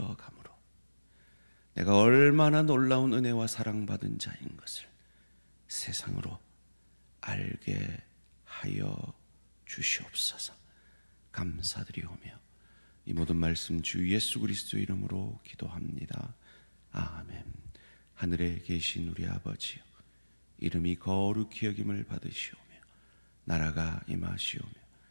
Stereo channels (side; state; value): both; inverted; correlation -1.00